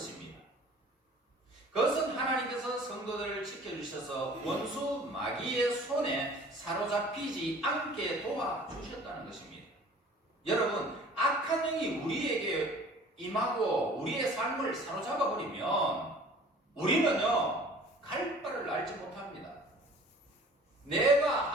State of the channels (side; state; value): both; normal; correlation 0.48